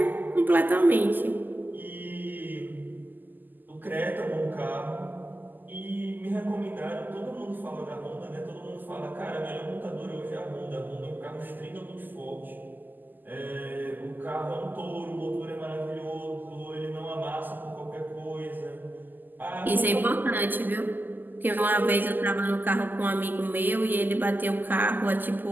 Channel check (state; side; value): late; left; 0.087 ms